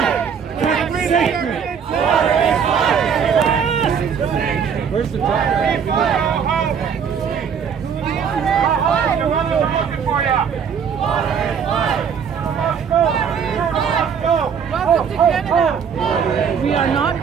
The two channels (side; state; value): left; quieter; 7.1 dB